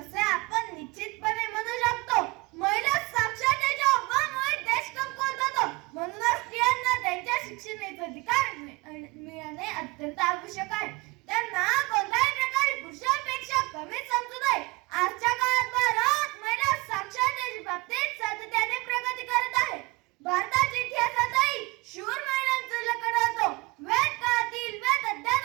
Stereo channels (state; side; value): quieter; left; 24.0 dB